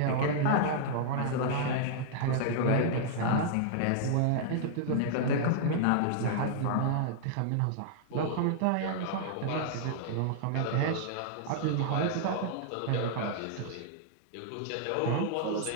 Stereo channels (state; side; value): different; both; correlation -0.01